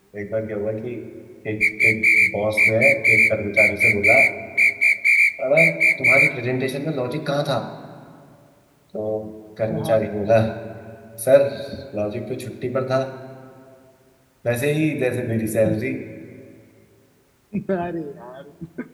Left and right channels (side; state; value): both; identical; correlation 1.00